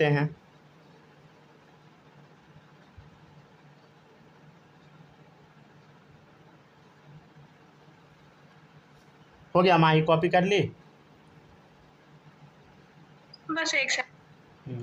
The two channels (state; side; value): identical; both; correlation 1.00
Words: हैं। हो गया माही, कॉपी कर ली? बस एक